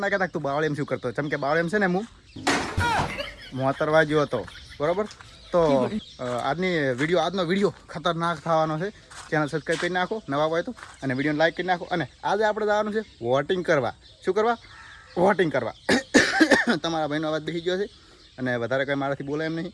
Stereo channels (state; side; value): identical; both; correlation 1.00